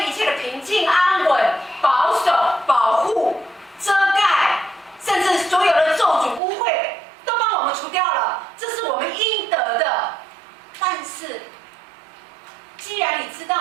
一切的平静、安稳、保守、保护。遮盖，甚至所有的咒诅、污秽都帮我们除掉了，这是我们应得的。但是，既然你知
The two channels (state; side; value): drops out; left; at 6.4 s